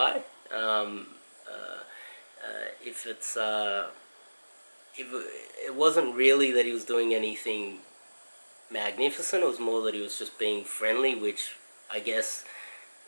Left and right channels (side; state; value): both; inverted; correlation -1.00